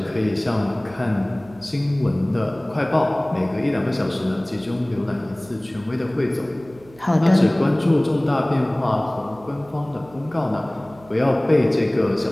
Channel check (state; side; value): noise; right; hum, 24 dB below the sound